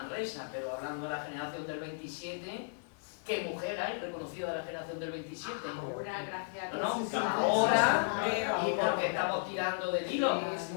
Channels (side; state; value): right; silent; digital silence